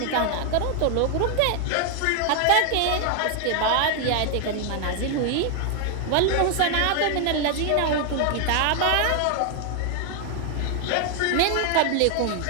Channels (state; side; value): different; both; correlation 0.00